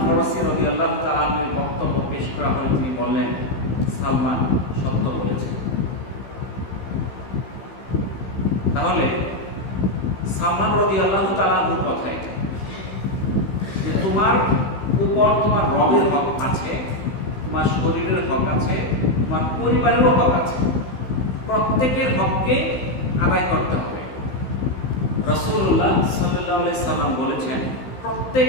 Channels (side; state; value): right; late; 15 ms